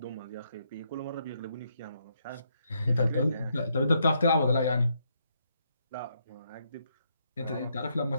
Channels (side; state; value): both; inverted; correlation -0.76